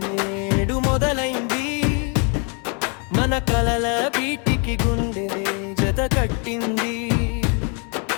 నేడు మొదలైంది, మన కలల బీటికి గుండె జత కట్టింది.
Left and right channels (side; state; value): right; quieter; 37.2 dB